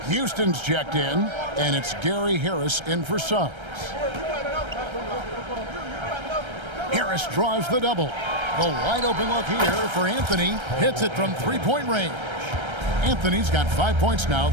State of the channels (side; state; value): left; late; 1.3 ms